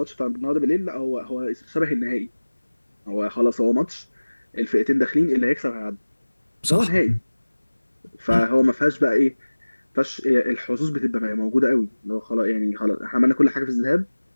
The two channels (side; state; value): both; inverted; correlation -1.00